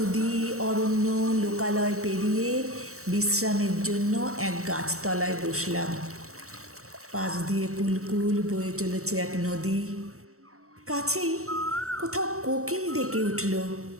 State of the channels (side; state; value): left; late; 0.64 ms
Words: অরণ্য, লোকালয় পেরিয়ে বিশ্রামের জন্য এক গাছতলায় বসলাম। পাশ দিয়ে কুলকুল বয়ে চলেছে এক নদী। কাছেই কোথাও কোকিল ডেকে উঠল,